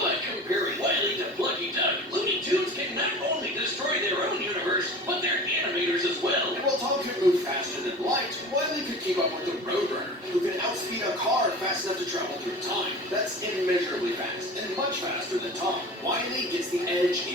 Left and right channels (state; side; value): normal; both; correlation 0.37